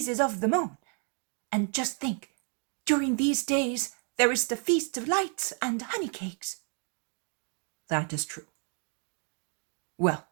of the moon. And just think, during these days there is the Feast of Lights and honey cakes." That is true. Well,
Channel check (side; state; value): left; quieter; 40.0 dB